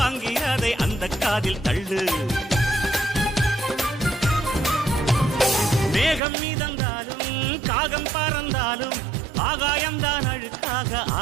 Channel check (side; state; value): left; drops out; at 6.2 s